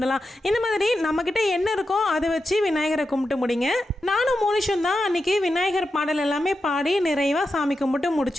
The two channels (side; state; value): both; normal; correlation 0.89